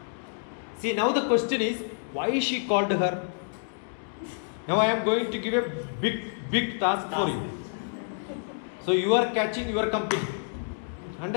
See, now the question is, why she called her? Now I am going to give a big task for you. So you are catching your company.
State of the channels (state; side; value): silent; right; digital silence